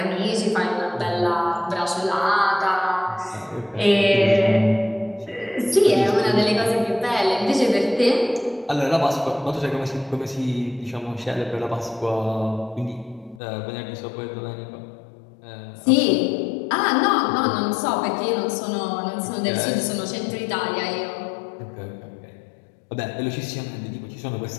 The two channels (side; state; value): right; drops out; at 13.4 s